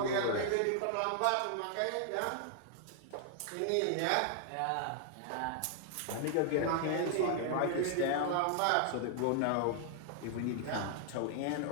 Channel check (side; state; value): both; different; correlation 0.00